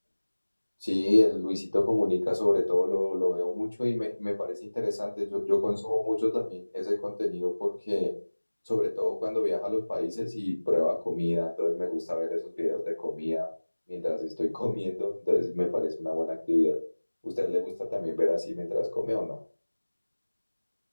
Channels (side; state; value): both; inverted; correlation -1.00